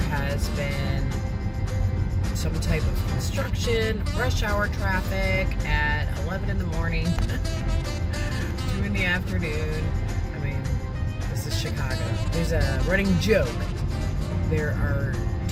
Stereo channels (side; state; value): both; identical; correlation 1.00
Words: been some type of construction, rush hour traffic at 11 in the morning, 2 in the afternoon. I mean, this is Chicago. There's a running joke. There are